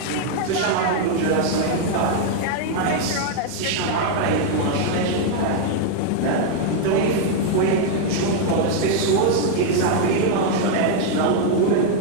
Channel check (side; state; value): both; different; correlation 0.00